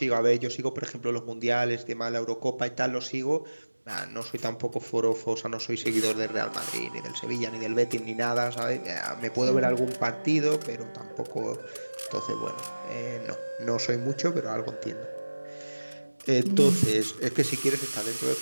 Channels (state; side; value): inverted; both; correlation -1.00